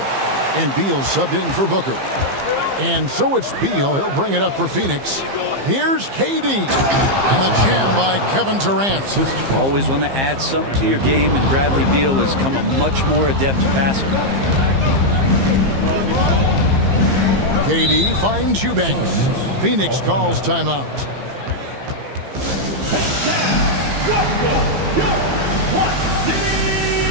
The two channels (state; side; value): late; left; 15 ms